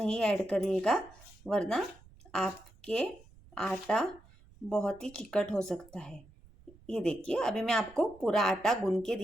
ऐड करिएगा, वरना आपके आटा बहुत ही चिकट हो सकता है। ये देखिए, अभी मैं आपको पूरा आटा गूंद के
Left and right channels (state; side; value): noise; right; rumble, 25 dB below the sound